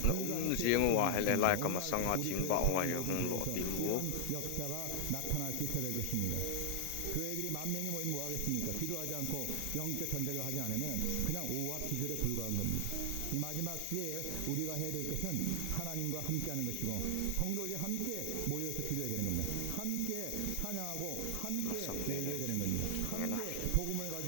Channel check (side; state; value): both; different; correlation 0.00